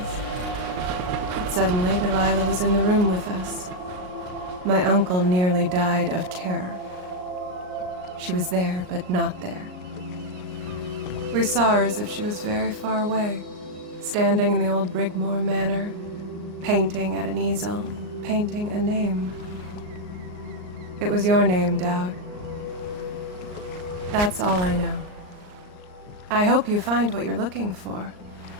But suddenly Delilah was in the room with us. My uncle nearly died of terror. She was there, but not there. We saw her as if she was very far away, standing in the old Brigmore Manor, painting at an easel, painting a name. It was your name, Daud. That's all I know. I hope you find what you're looking for.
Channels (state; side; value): late; left; 39 ms